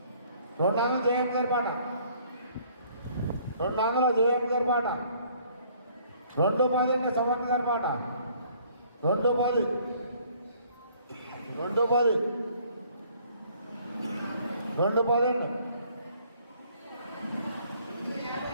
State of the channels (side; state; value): both; inverted; correlation -0.60